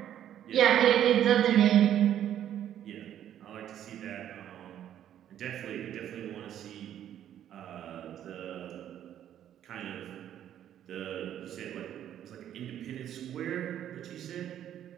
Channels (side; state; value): left; quieter; 10.7 dB